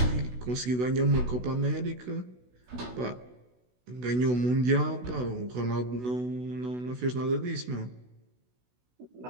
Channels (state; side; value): late; left; 16 ms